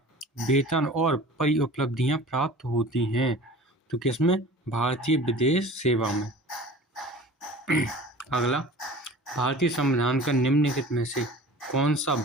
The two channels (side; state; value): both; normal; correlation 0.41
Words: वेतन और परिउपलब्धियां प्राप्त होती हैं? तो किसमें? भारतीय विदेश सेवा में। अगला, भारतीय संविधान का निम्नलिखित में से कौन सा